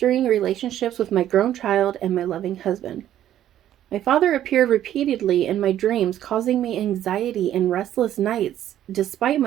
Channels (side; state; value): left; quieter; 11.8 dB